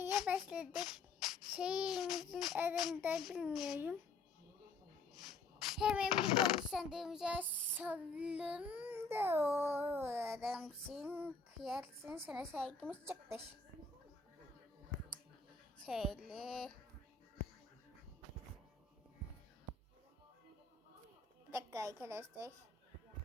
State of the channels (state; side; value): quieter; right; 4.2 dB